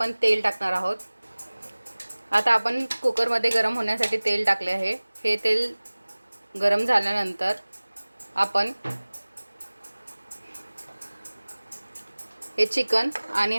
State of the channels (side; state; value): both; inverted; correlation -1.00